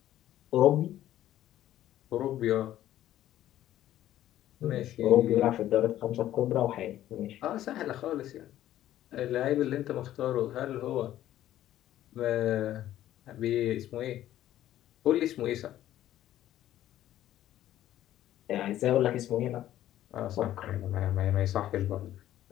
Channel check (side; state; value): right; quieter; 12.9 dB